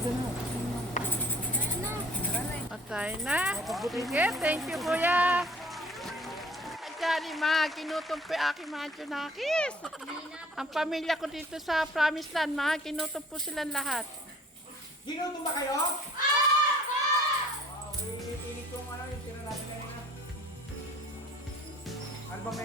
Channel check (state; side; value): normal; both; correlation 0.53